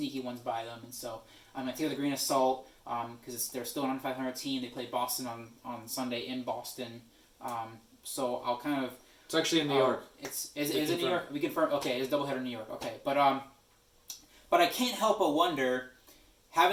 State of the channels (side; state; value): both; identical; correlation 1.00